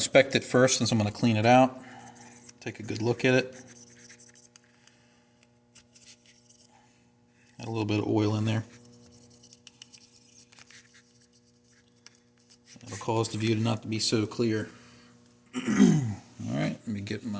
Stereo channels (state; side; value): identical; both; correlation 1.00